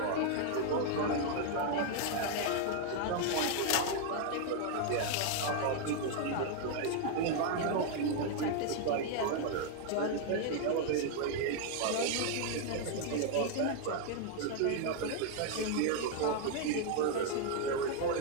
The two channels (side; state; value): both; different; correlation 0.00